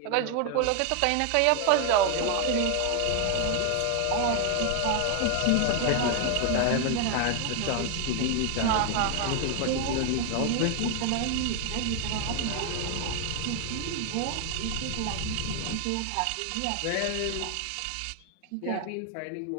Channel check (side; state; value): both; different; correlation 0.00